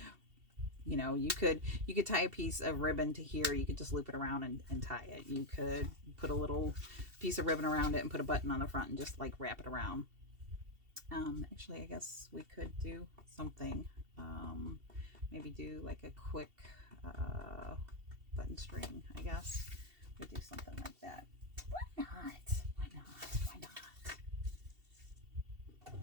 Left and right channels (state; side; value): late; left; 2.7 ms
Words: You know, you could tie a piece of ribbon to here. You could just loop it around and tie it. You could put a little piece of ribbon around it and put a button on the front and just like wrap it around. Actually, I guess we could do something. Maybe do like a quick button string, I guess. We do something like that. Why not? Why not? Why